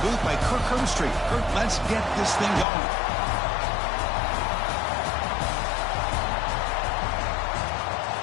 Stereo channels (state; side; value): drops out; right; at 2.7 s